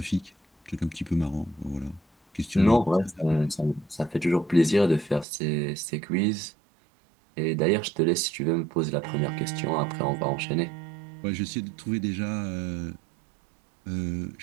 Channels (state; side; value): drops out; left; at 5.2 s